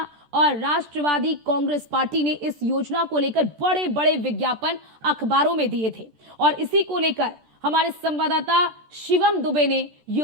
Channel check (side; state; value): left; late; 14 ms